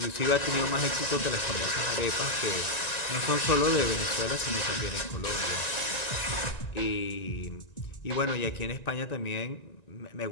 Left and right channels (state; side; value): late; right; 1.9 ms